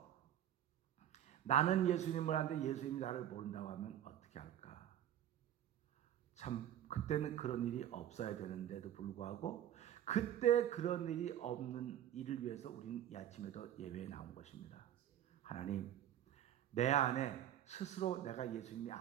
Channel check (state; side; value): quieter; left; 11.2 dB